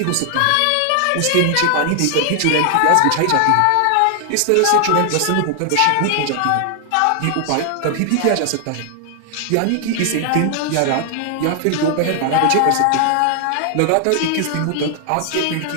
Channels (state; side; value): different; both; correlation 0.00